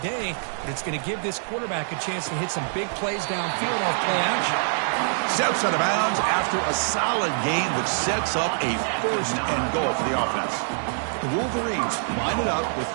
day, but it's going to give this quarterback a chance to hit some big plays downfield off play action. Steps out of bounds after a solid game, which sets up a first and goal for the offense. The Wolverines line it up with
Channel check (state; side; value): silent; left; digital silence